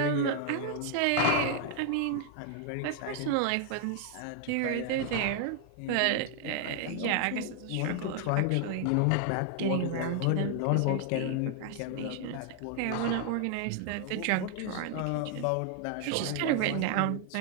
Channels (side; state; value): both; different; correlation 0.00